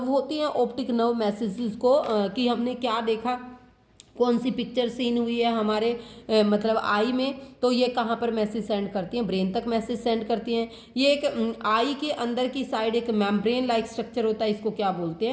होती है। ऑप्टिक नर्व मैसेजेस को कि हमने क्या देखा, कौन सी पिक्चर सीन हुई है हमारे मतलब आई में, तो ये कहाँ पर मैसेज सेंड करती हैं, ब्रेन तक मैसेज सेंड करती हैं। ये एक आई के अंदर की साइड एक मेम्ब्रेन लाइक स्ट्रक्चर होता है, इसको क्या बोलते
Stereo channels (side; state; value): both; identical; correlation 1.00